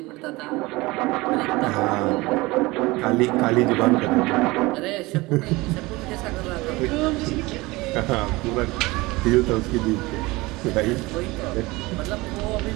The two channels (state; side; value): quieter; left; 21.8 dB